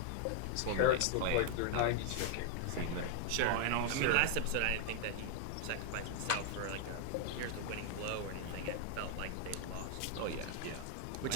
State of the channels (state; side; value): different; both; correlation 0.00